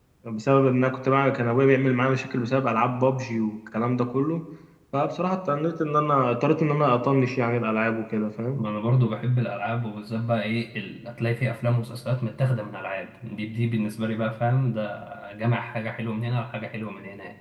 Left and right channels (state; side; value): identical; both; correlation 1.00